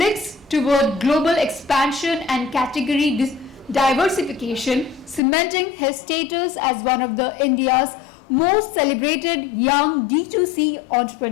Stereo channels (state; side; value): drops out; right; at 5.2 s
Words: toward global expansion and category diversification, cementing his status as one of India's most celebrated young D2C